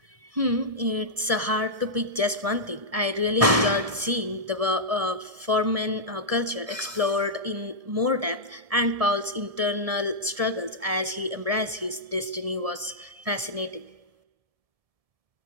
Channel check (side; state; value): left; late; 1.7 ms